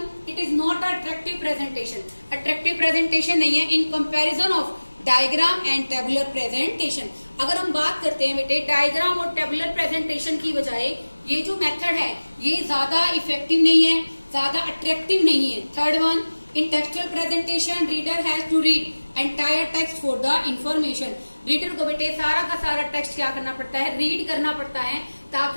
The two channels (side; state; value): both; inverted; correlation -1.00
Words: it is not attractive presentation. Attractive presentation नहीं है in comparison of diagram and tabular presentation. अगर हम बात करते हैं बेटे diagram और tabular presentation की बजाय ये जो मेथड है ये ज्यादा इफेक्टिव नहीं है, ज्यादा अट्रैक्टिव नहीं है। Third one, in textual presentation reader has to read entire text for the information. Reader को बेटे सारा का सारा टेक्स्ट क्या करना पड़ता है, रीड करना पड़ता है